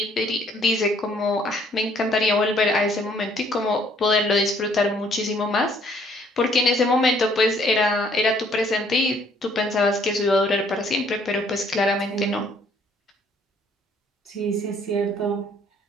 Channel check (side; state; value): both; normal; correlation 0.63